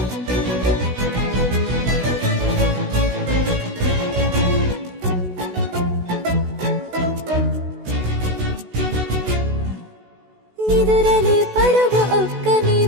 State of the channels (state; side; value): late; left; 16 ms